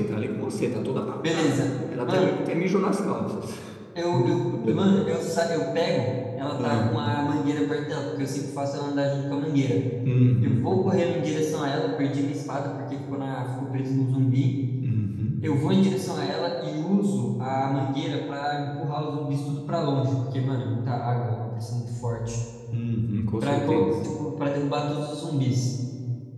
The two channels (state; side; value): identical; both; correlation 1.00